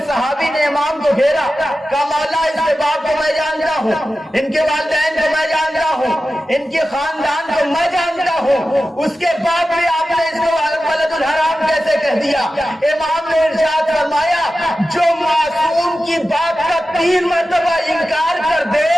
صحابی نے امام کو گھیرا، کہا مولا اس کے باپ کو میں جانتا ہوں، ان کے والدین کو میں جانتا ہوں، ان کے خاندان کو میں جانتا ہوں، اس کے بعد بھی آپ نے اس کو ولد الحرام کیسے کہہ دیا؟ امام نے ارشاد فرمایا جو معصوم کی بات کا 3 مرتبہ انکار کر دے،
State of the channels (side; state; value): both; normal; correlation 0.93